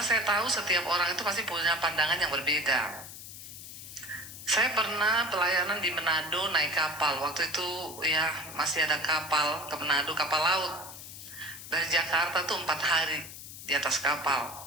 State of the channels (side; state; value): left; noise; hiss, 13 dB below the sound